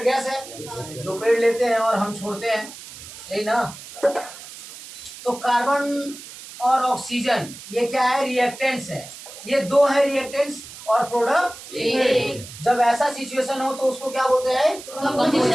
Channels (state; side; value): noise; right; hiss, 15 dB below the sound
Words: गैस है जो पेड़ लेते हैं और हम छोड़ते हैं, यही ना। तो कार्बन और ऑक्सीजन ये क्या है, रिएक्टेंट्स है, ये दो है रिएक्टेंट्स, और प्रोडक्ट एक। जब ऐसा सिचुएशन हो तो उसको क्या बोलते हैं,